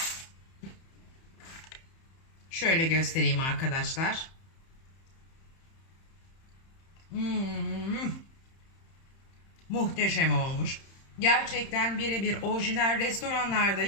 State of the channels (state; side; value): late; right; 31 ms